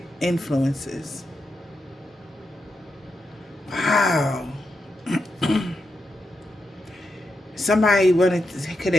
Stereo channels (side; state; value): both; normal; correlation 0.86